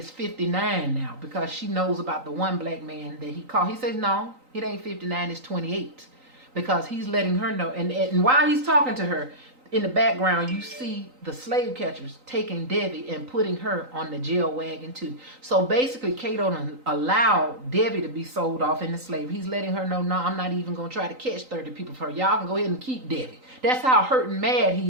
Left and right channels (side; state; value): left; late; 3.9 ms